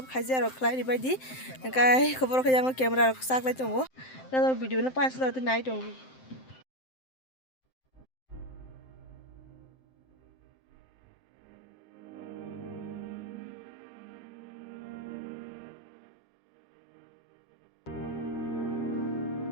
khaijak rok khlai baidi kai khobor khe jango camera rok saklai tongo na video no pas lo nai tongo.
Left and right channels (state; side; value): late; right; 7.7 ms